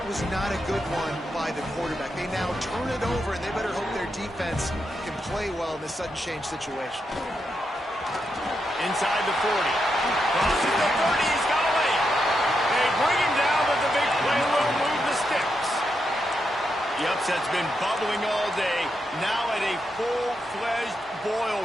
was not a good one by the quarterback. They now turn it over, and they better hope their defense can play well in this sudden change situation. Inside the 40. Crosses the 30. He's got a lane. They bring him down, but the big play will move the sticks. The upset's been bubbling all day. Now at a full-fledged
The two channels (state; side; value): normal; both; correlation 0.84